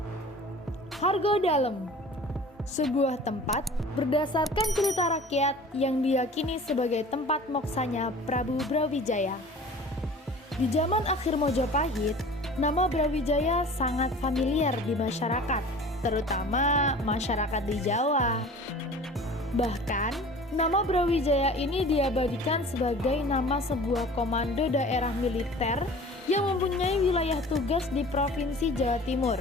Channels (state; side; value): normal; both; correlation 0.43